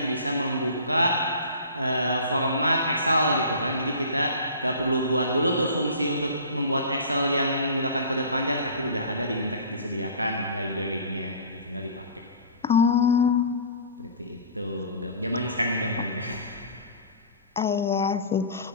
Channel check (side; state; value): both; inverted; correlation -0.41